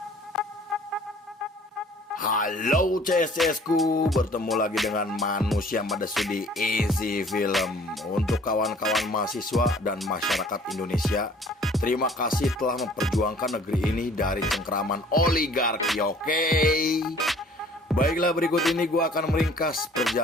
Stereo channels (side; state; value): both; normal; correlation 0.53